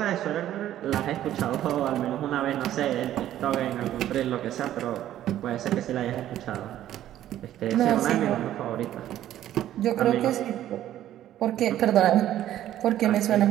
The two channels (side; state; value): left; quieter; 12.4 dB